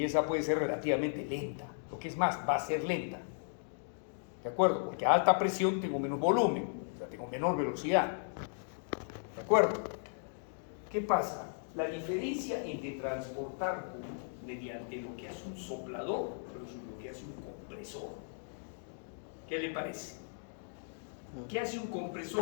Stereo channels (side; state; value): right; silent; digital silence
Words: esa puede ser relativamente lenta, lo que es más, va a ser lenta. ¿De acuerdo? Porque a alta presión tengo menos volumen, o sea, tengo menor velocidad. ¿De acuerdo? ¿Qué pasa? La diferencia entre transportar mediante lo que hace un soplador versus lo que hace un compresor. ¿Qué le parece? ¿Qué hace un